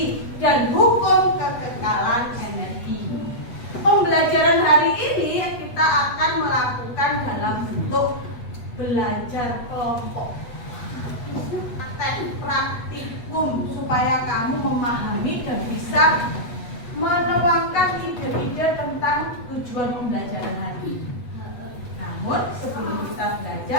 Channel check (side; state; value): right; late; 8.2 ms